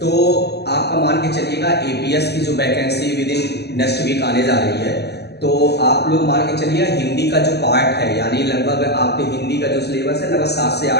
तो आपका मान के चलिएगा एपीएस की जो vacancy within next week आने जा रही है, तो आप लोग मान के चलिए हिंदी का जो पार्ट है, यानी लगभग आपके हिंदी का जो सिलेबस है लगभग 7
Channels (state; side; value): late; right; 0.48 ms